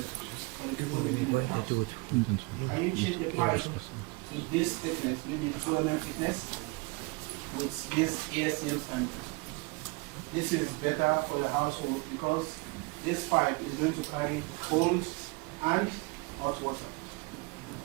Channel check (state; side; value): quieter; left; 26.8 dB